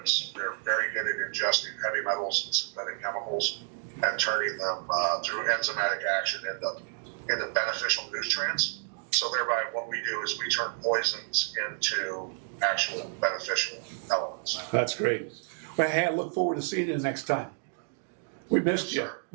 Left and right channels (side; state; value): left; silent; digital silence